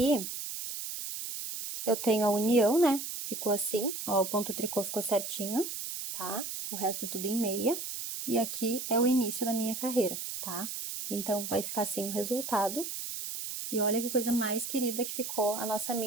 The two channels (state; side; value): noise; right; hiss, 6 dB below the sound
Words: eu tenho a união, né? Ficou assim, ó, o ponto tricô ficou certinho, tá? O resto é tudo em meia. E aqui é o início da minha carreira, tá? Então, vai ficar assim o resultado. E olha que coisa mais querida que ficou a nossa